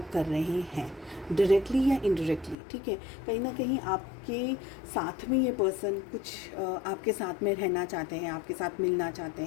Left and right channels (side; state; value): right; drops out; at 2.6 s